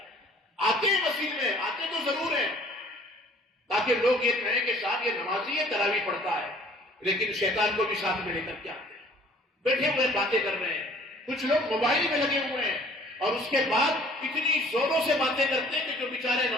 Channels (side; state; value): both; normal; correlation 0.54